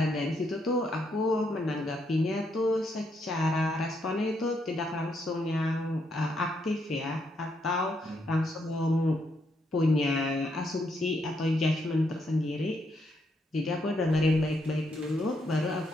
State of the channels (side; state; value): both; normal; correlation 0.77